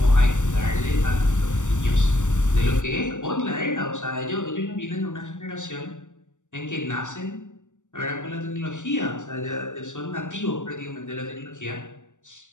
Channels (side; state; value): right; late; 0.85 ms